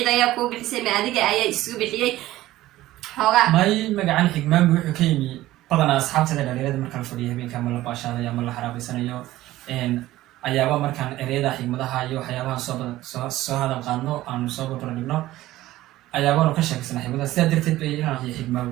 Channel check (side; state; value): left; quieter; 15.9 dB